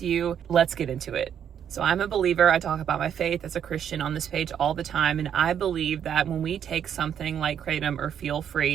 you. Let's get into it. So I'm a believer. I talk about my faith as a Christian on this page all the time. And I believe that when we take something like Kratom or Feel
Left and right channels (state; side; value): quieter; left; 8.9 dB